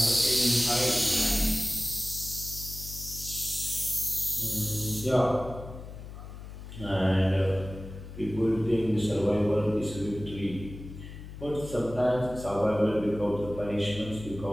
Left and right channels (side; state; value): left; noise; hum, 12 dB below the sound